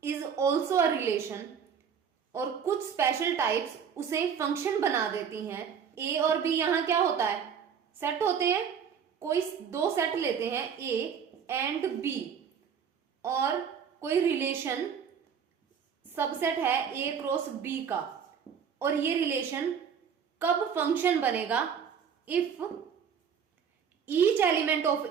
is also a relation. और कुछ स्पेशल टाइप्स उसे फंक्शन बना देती हैं। ए और बी यहां क्या होता है, सेट होते हैं। कोई दो सेट लेते हैं, ए एंड बी, और कोई रिलेशन सबसेट है ए क्रॉस बी का, और ये रिलेशन कब फंक्शन बनेगा, इफ ईच एलिमेंट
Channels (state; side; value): quieter; left; 7.3 dB